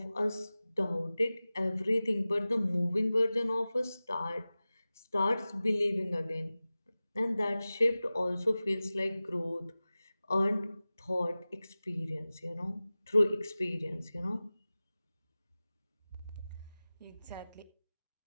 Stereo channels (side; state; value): both; inverted; correlation -0.97